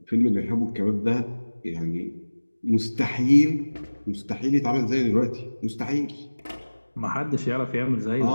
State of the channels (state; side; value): inverted; both; correlation -1.00